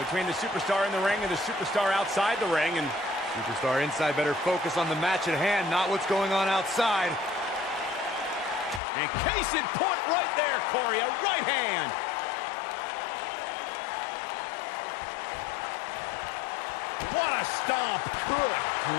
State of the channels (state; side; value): drops out; right; at 8.8 s